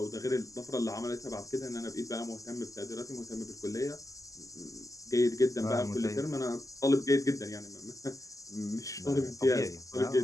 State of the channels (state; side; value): late; right; 0.16 ms